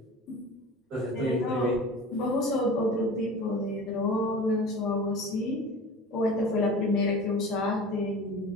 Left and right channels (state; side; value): normal; both; correlation 0.37